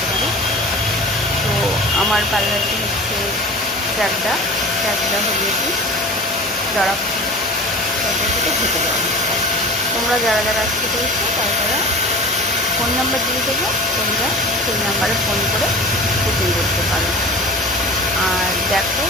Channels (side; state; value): both; normal; correlation 0.37